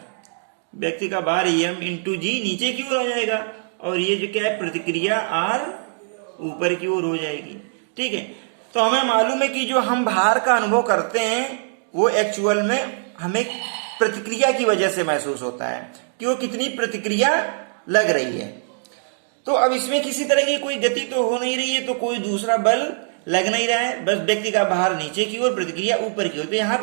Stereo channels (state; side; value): silent; left; digital silence